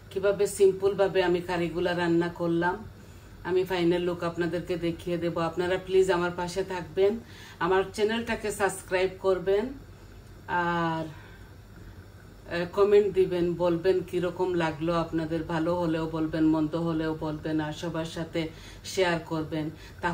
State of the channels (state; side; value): identical; both; correlation 1.00